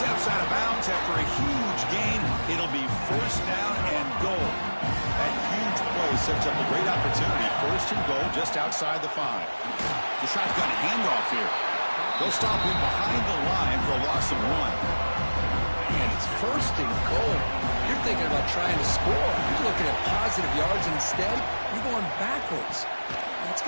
out of bounds after a huge gain. It'll be first down and goal. That huge play sets up a great opportunity. First and goal just outside the 5. The shotgun handoff here. They'll stop him behind the line for a loss of 1. And it's first and goal. You're thinking about trying to score. You're looking at positive yards, and instead, you're going backwards. That's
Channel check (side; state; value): both; inverted; correlation -1.00